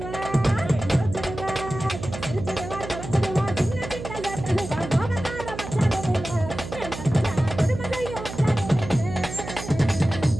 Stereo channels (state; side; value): noise; right; hum, 9 dB below the sound